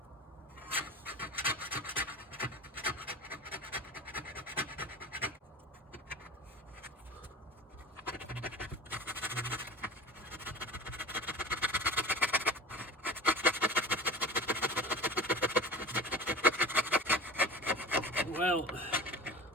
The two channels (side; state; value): both; normal; correlation 0.36